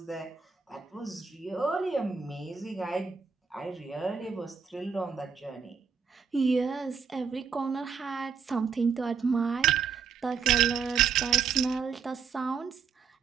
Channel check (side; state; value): left; quieter; 6.1 dB